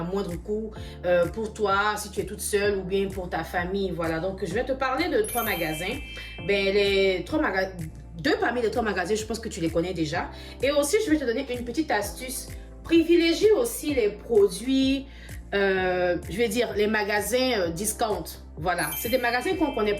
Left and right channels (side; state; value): both; identical; correlation 1.00